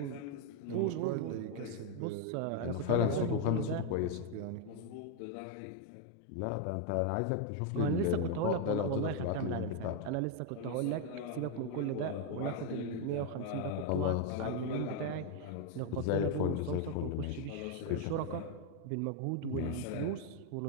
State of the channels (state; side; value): different; both; correlation 0.01